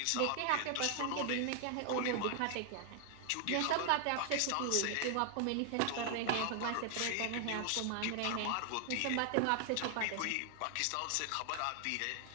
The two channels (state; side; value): different; both; correlation 0.00